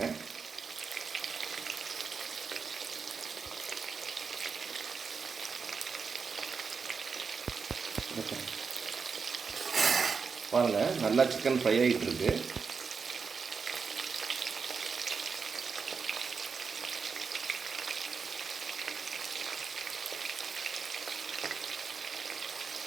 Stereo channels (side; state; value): left; quieter; 5.4 dB